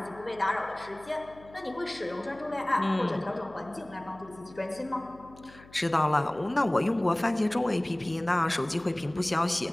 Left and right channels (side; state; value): left; noise; hum, 22 dB below the sound